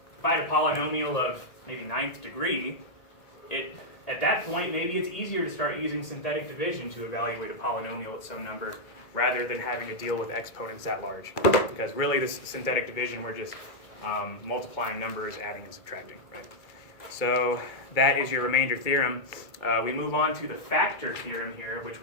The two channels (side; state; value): right; late; 2.2 ms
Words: I had a polynomial of maybe 9th degree, at that point maybe it's easier to start using synthetic division to evaluate a polynomial at some number rather than having to deal with exponents that large. Because really this synthetic division, we're just multiplying numbers, adding and subtracting, right? So that is your remainder theorem. We move on to the factor theorem here, which